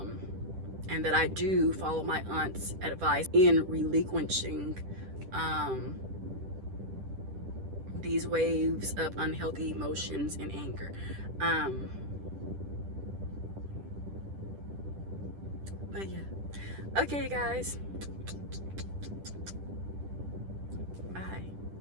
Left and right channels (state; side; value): late; left; 10 ms